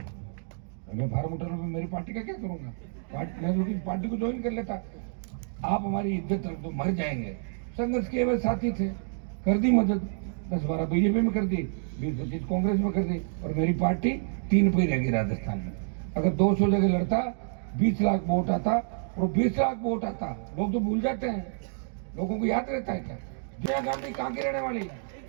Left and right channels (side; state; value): left; silent; digital silence